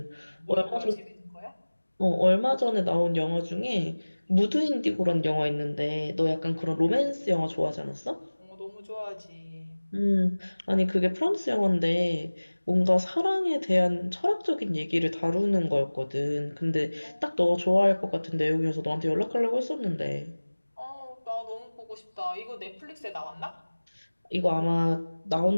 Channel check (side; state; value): both; inverted; correlation -1.00